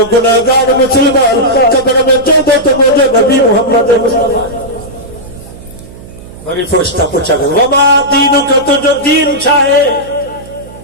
گناہگار مسلمان قبر میں چودو تو مجھے نبی محمد مصطفیٰ بڑی فرشتہ پوچھا گا وما دینو کا تو جو دین چاہے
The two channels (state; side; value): noise; right; hum, 18 dB below the sound